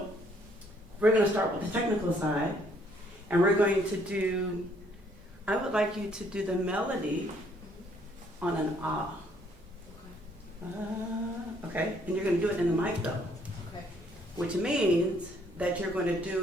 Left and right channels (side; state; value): both; normal; correlation 0.65